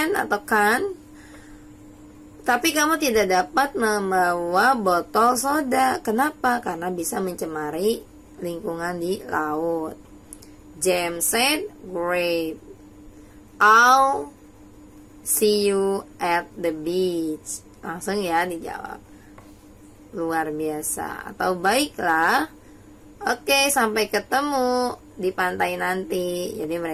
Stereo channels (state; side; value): identical; both; correlation 1.00